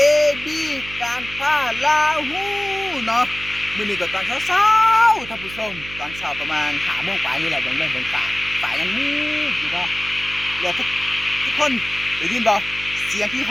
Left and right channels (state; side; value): noise; right; hum, 14 dB below the sound